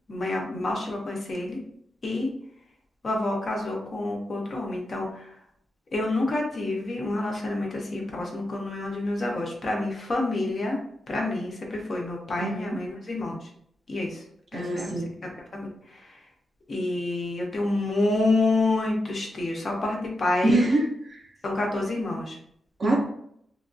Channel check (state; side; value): normal; both; correlation 0.86